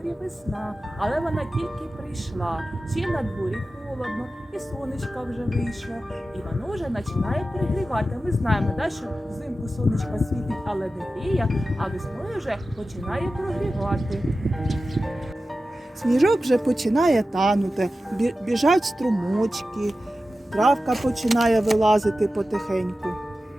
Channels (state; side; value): normal; both; correlation 0.94